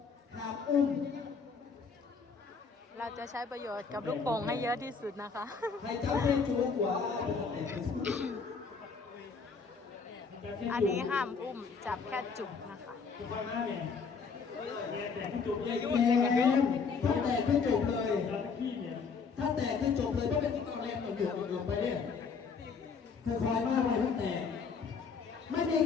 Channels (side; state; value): right; quieter; 5.4 dB